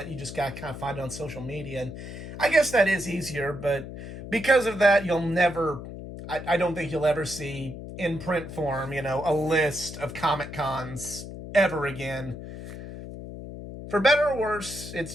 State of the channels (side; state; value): left; noise; hum, 10 dB below the sound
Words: you just got to kind of find it on social media. And I guess that is easier, but because of that, you'll never, I don't think you'll ever see in print form, a list of Comic Cons ever again. For better or worse,